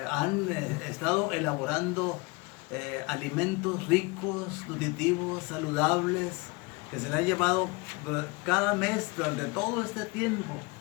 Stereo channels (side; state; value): right; quieter; 26.6 dB